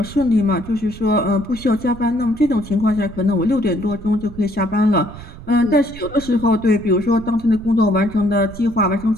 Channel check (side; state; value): right; noise; rumble, 15 dB below the sound